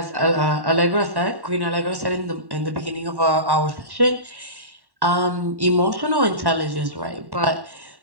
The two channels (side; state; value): left; late; 1.1 ms